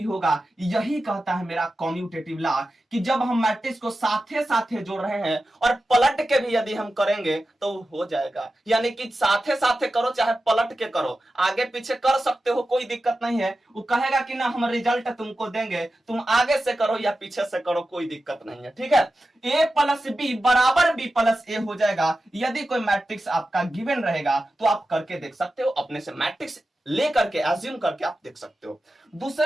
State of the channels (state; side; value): normal; both; correlation 0.93